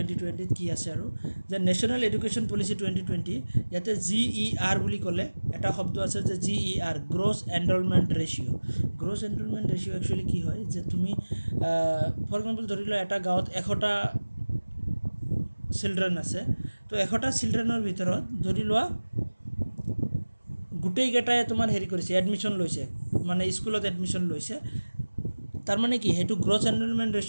কি আছে, আৰু যে নেশ্যনেল এডুকেশ্যন পলিচি 2020, ইয়াতে GER বুলি ক'লে এটা শব্দ আছে যে GER gross enrolment ratio'. Gross enrolment ratio' actually কি হয় যে তুমি ফৰ এক্সাম্পল ধৰি লোৱা এটা গাঁৱত 100টা চিলড্ৰেন আছে, তো 100টা চিলড্ৰেনৰ ভিতৰত ধৰি লোৱা গোটেইকেইটাই তোমাৰ হেৰি কৰিছে, এডমিশ্যন লৈছে, মানে স্কুলত এডমিশ্যন লৈছে। তাৰমানে কি সেইটো গ্ৰছ এনৰলমেণ্ট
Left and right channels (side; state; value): both; inverted; correlation -1.00